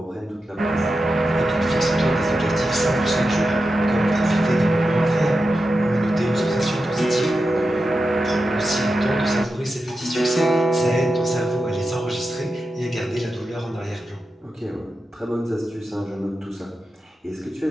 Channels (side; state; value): both; normal; correlation 0.90